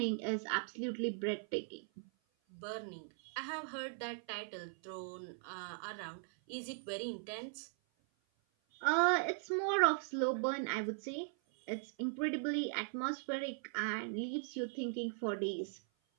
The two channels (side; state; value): left; silent; 52 dB below the other